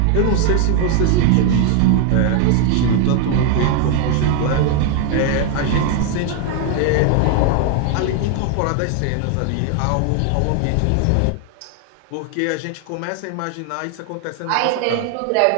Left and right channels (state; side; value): different; both; correlation 0.00